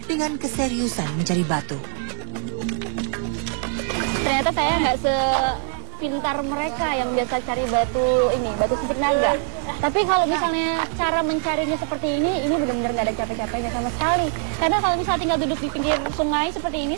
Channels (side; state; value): left; silent; digital silence